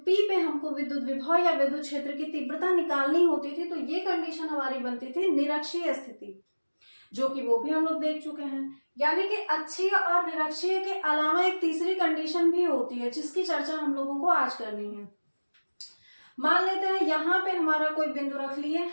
P पे हमको विद्युत विभव या विद्युत क्षेत्र की तीव्रता निकालनी होती थी तो ये कंडीशन हमारी बनती थी निरक्षीय स्थिति, जो कि वो भी हम लोग देख चुके हैं। यानी कि अक्षीय और निरक्षीय के अलावा एक तीसरी कंडीशन भी होती है जिसकी चर्चा हम लोगों को आज करनी है। मान लेते हैं यहाँ पे हमारा कोई बिंदु रख लिए,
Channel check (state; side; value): inverted; both; correlation -1.00